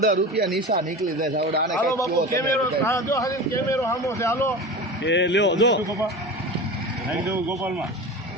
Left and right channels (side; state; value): both; normal; correlation 0.30